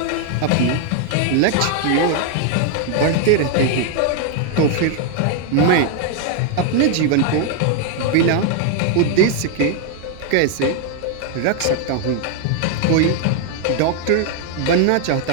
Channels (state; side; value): different; both; correlation 0.00